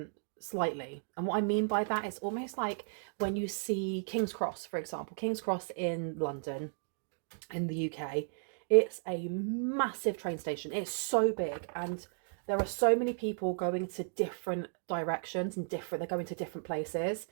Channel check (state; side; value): silent; left; digital silence